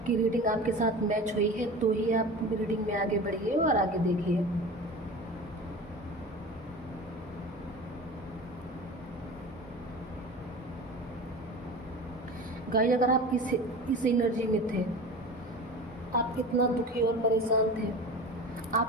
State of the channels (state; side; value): normal; both; correlation 0.34